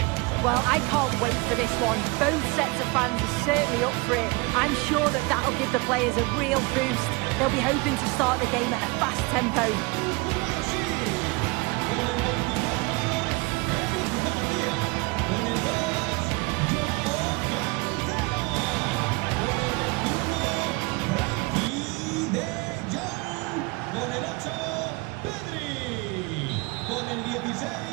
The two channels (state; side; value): quieter; left; 26.2 dB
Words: Well, I can't wait for this one. Both sets of fans are certainly up for it. I'm sure that that'll give the players a real boost. They'll be hoping to start the game at a fast tempo.